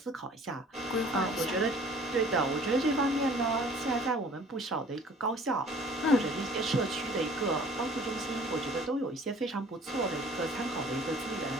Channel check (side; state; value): both; normal; correlation 0.51